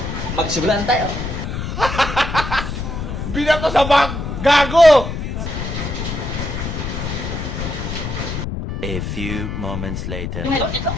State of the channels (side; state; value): left; noise; rumble, 4 dB below the sound